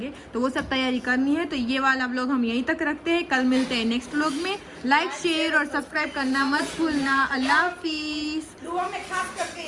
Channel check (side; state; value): both; identical; correlation 1.00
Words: तो वो सब तैयारी करनी है। तो ये वाला व्लॉग हम यहीं तक रखते हैं, कल मिलते हैं नेक्स्ट व्लॉग में। लाइक शेयर और सब्सक्राइब करना मत भूलना। अल्लाह हाफिज। दुआ में खास करके